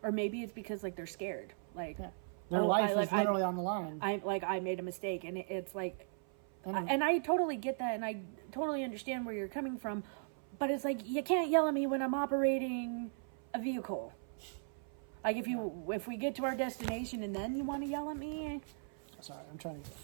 or maybe it's because like they're scared. Like, yeah. Their life is literally on the line. I made a mistake, and it's like, and I totally get that, and I totally understand where you're coming from, but it's like you can't yell at me when I'm operating a vehicle. Like if we get to our destination and then you want to yell at me. Sorry, I'm trying to get the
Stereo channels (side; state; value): left; silent; 53 dB below the other